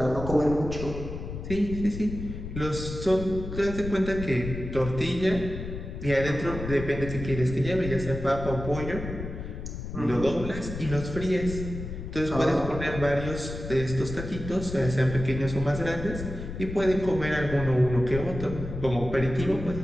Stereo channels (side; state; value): left; noise; rumble, 8 dB below the sound